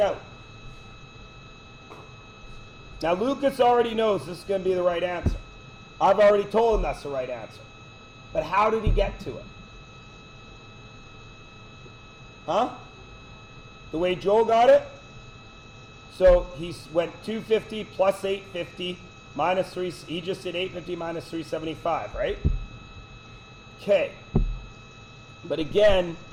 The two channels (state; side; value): identical; both; correlation 1.00